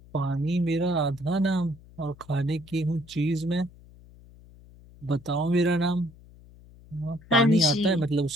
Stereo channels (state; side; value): noise; left; hum, 23 dB below the sound